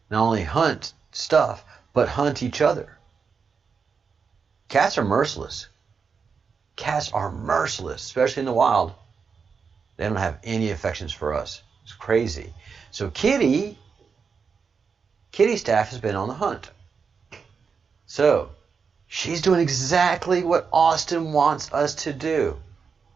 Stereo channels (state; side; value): quieter; left; 5.7 dB